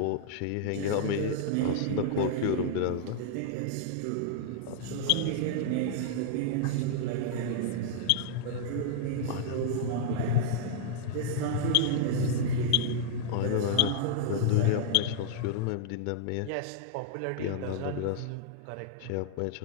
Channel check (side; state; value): both; different; correlation -0.01